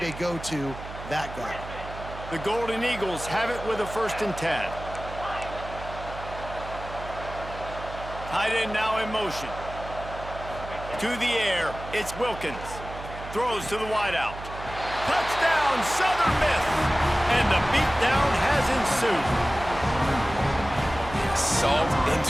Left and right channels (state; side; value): noise; right; hum, 12 dB below the sound